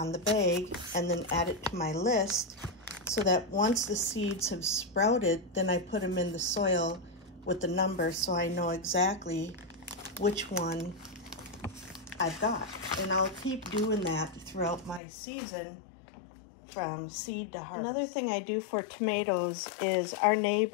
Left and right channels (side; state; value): right; drops out; at 15.0 s